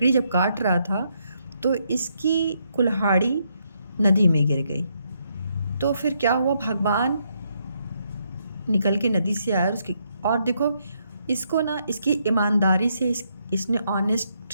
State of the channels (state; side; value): inverted; both; correlation -0.76